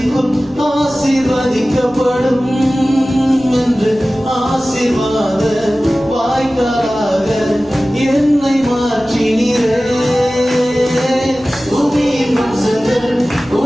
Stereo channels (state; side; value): noise; left; rumble, 24 dB below the sound